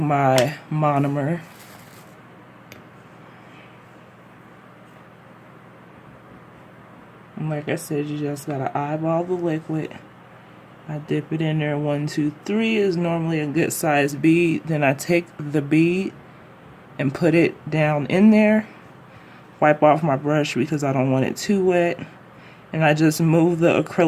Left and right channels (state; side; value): identical; both; correlation 1.00